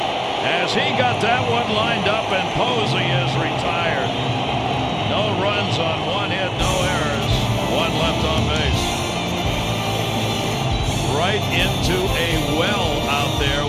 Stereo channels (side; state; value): both; identical; correlation 1.00